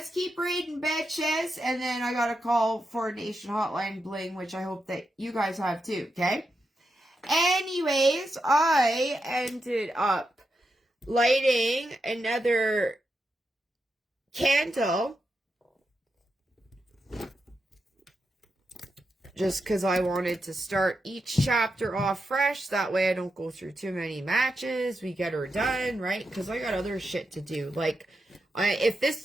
keep reading, bitches. And then I got to call Foreign Nation Hotline Bling, which I hope that you guys have too, okay? Anyways, I ended up lighting another candle just because I wanted to start each chapter off fresh. That way I don't go through too many matches. We get her done, right? Because I got other shit to do. Like, if this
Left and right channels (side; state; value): both; normal; correlation 0.86